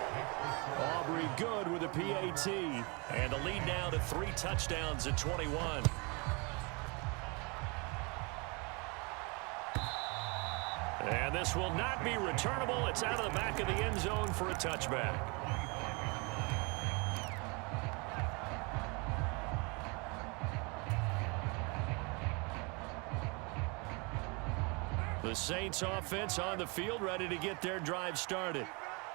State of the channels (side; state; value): left; quieter; 30.1 dB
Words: Aubrey good with a PAT. And the lead now to 3 touchdowns at 21. And this will not be returnable. It's out of the back of the end zone for a touchback. The Saints offense on the field ready to get their drive started.